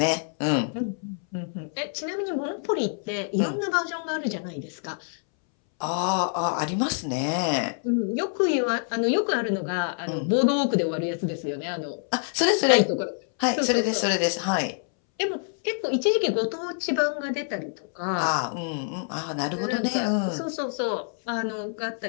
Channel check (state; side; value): silent; right; 61 dB below the other